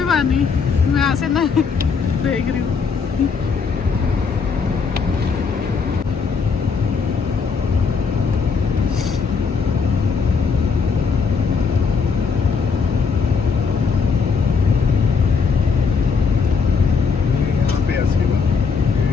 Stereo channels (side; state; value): right; quieter; 5.5 dB